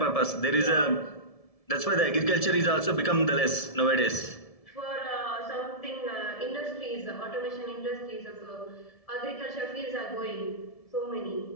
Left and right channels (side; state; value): right; late; 1.7 ms